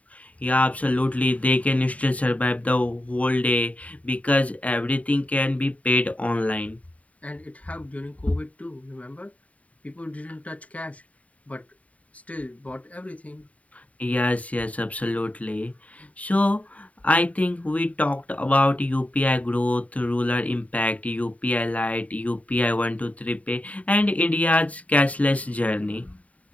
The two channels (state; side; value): late; right; 0.068 ms